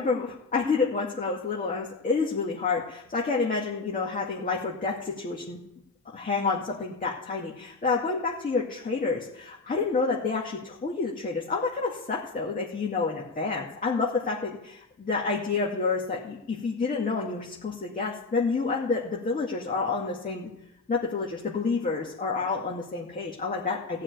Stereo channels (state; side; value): quieter; right; 3.9 dB